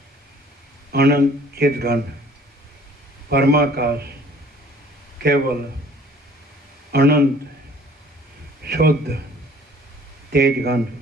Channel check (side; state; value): both; normal; correlation 0.54